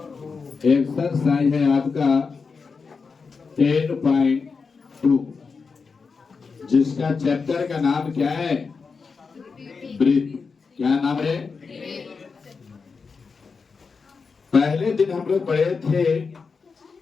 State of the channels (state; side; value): quieter; right; 5.0 dB